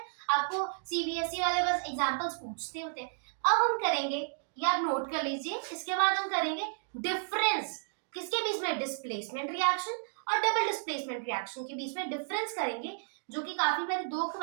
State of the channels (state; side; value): silent; left; digital silence